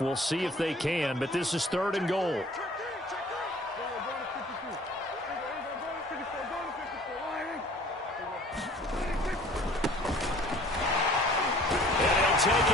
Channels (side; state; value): both; normal; correlation 0.51